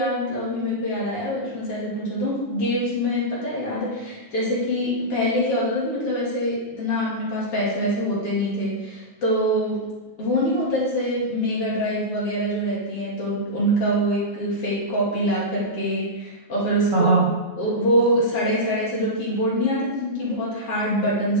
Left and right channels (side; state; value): both; normal; correlation -0.12